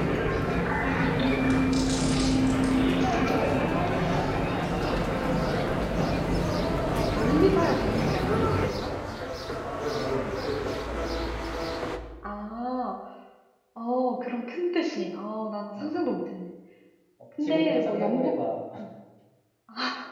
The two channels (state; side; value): identical; both; correlation 1.00